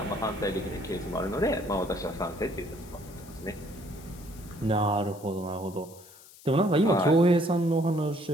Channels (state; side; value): noise; left; hiss, 21 dB below the sound